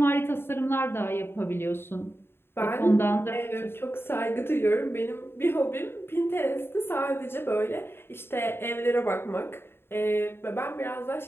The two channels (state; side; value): late; right; 0.11 ms